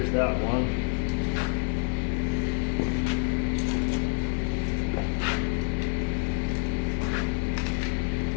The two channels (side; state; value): right; silent; digital silence